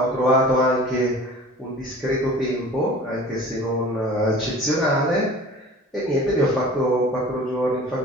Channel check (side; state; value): both; normal; correlation 0.43